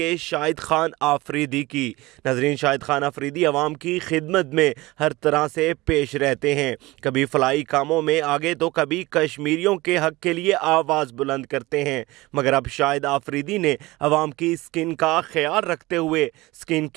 शाहिद खान आफरीदी की। नाज़रीन, शाहिद खान आफरीदी आवाम की खिदमत में हर तरह से पेश रहते हैं। कभी फलाई कामों में आगे तो कभी कश्मीरियों के हक़ के लिए आवाज़ बुलंद करते हैं। मगर अब शाहिद आफरीदी ने आवाम की स्किन का ख्याल रखते हुए स्किन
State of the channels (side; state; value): left; quieter; 20.6 dB